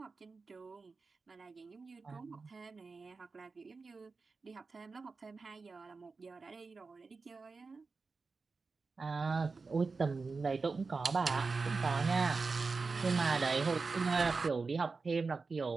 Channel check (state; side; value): quieter; left; 4.3 dB